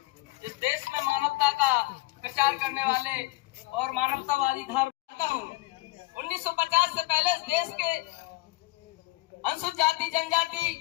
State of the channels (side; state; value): right; quieter; 21.6 dB